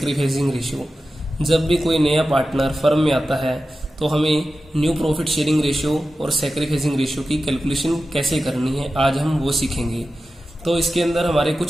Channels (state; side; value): normal; both; correlation 0.93